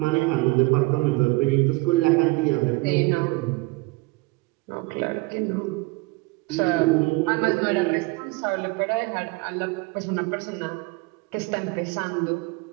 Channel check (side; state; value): left; quieter; 24.6 dB